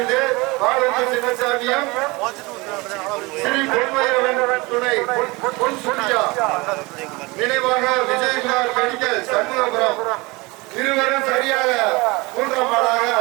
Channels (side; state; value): left; quieter; 24.3 dB